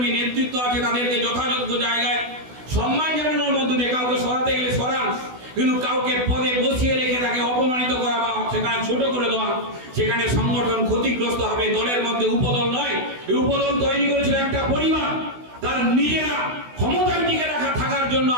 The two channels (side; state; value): left; late; 16 ms